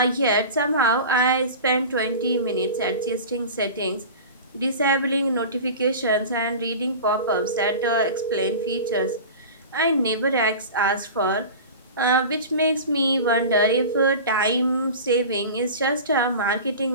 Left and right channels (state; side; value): inverted; both; correlation -0.33